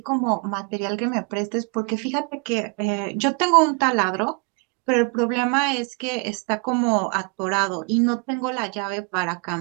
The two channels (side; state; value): left; quieter; 33.9 dB